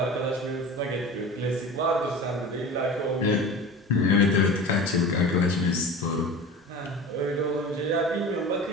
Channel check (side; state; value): both; normal; correlation 0.34